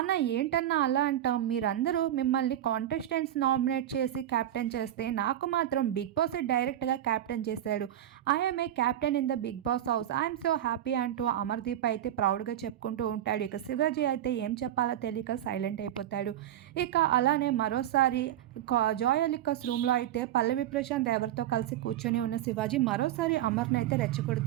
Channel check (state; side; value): quieter; left; 11.9 dB